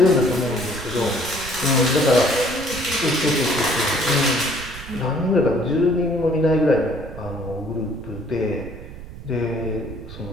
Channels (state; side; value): noise; right; rumble, 13 dB below the sound